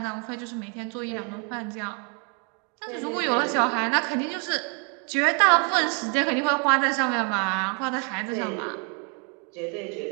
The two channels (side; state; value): left; quieter; 35.7 dB